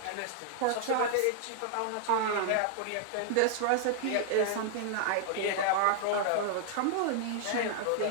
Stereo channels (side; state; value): both; different; correlation -0.01